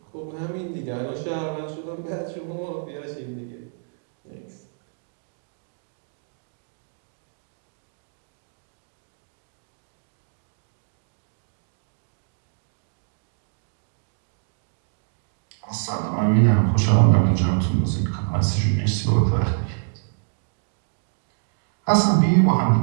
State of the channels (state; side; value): silent; left; digital silence